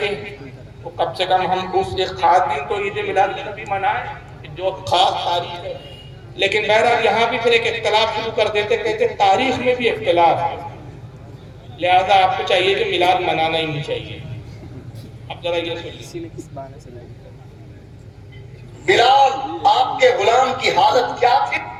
تو کم سے کم ہم اس ایک خاص دن تو عید میلاد النبی منائیں جو خاص تاریخ ہے لیکن بہرحال یہاں بھی پھر ایک اختلاف شروع کر دیتے کہتے تاریخ میں بھی اختلاف ہے لہذا آپ کو چاہیے کہ میلاد منانا ہی نہیں چاہیے اب ذرا یہ سنیے بلال آپ کے غلام کی حالت کیا تھی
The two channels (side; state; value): both; identical; correlation 1.00